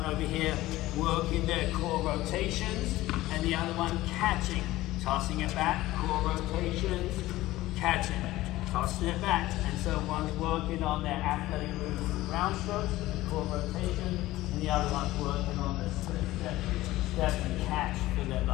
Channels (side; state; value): right; quieter; 17.0 dB